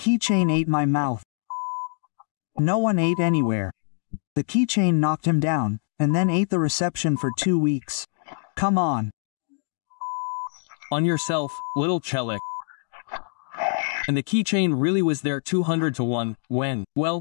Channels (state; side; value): silent; right; 62 dB below the other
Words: ate my mouth. No one ate anywhere. The keychain knocked him down, and then ate the reception for 2 weeks. Come on. On yourself, little Chelik. And the keychain really was there 200 to 1, when,